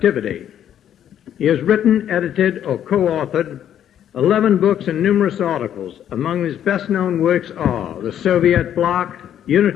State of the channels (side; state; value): right; quieter; 10.2 dB